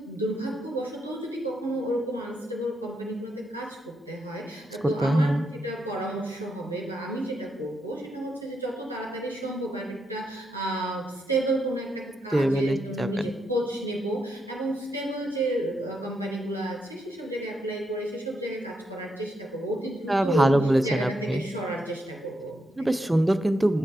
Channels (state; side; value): normal; both; correlation 0.81